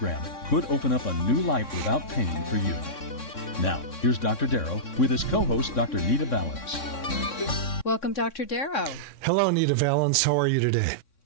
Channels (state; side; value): late; right; 3.6 ms